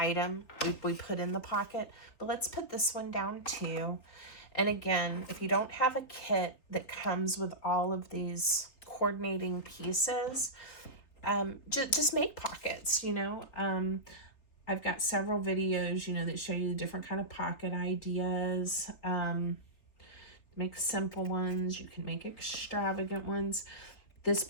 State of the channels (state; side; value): late; right; 3.9 ms